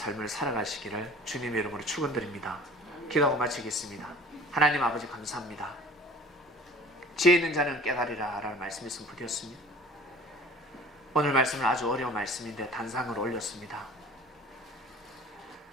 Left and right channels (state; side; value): normal; both; correlation 0.44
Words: 살아가시기를 주님의 이름으로 축원드립니다. 기도하고 마치겠습니다. 하나님 아버지 감사합니다. 지혜 있는 자는 깨달으라 라는 말씀이 선포되었습니다. 오늘 말씀은 아주 어려운 말씀인데 단상을 올렸습니다.